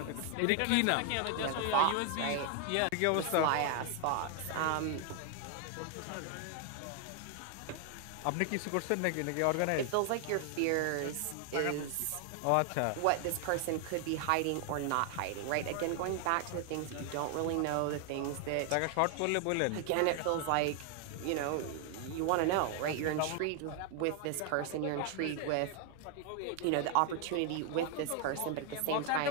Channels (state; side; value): different; both; correlation 0.00